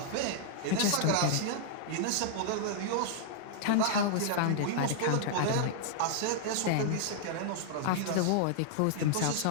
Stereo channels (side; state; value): both; different; correlation -0.01